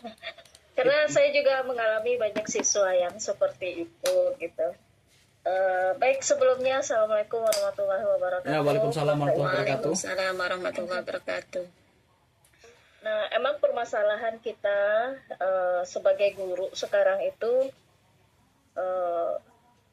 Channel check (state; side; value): identical; both; correlation 1.00